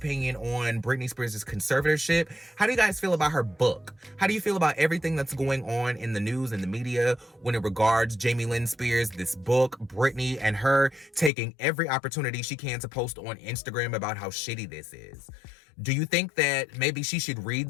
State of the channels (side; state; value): right; drops out; at 11.3 s